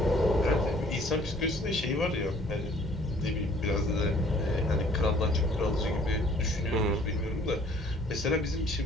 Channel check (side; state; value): both; normal; correlation 0.57